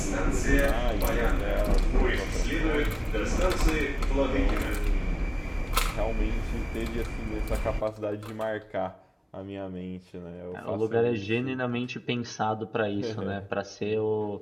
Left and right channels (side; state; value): both; identical; correlation 1.00